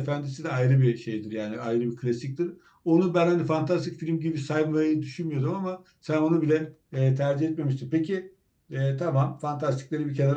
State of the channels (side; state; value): both; identical; correlation 1.00